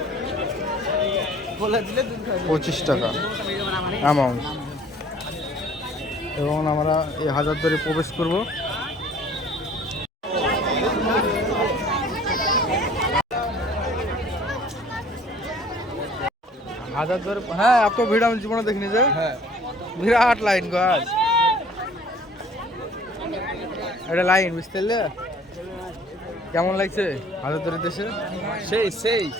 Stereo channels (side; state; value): both; normal; correlation 0.53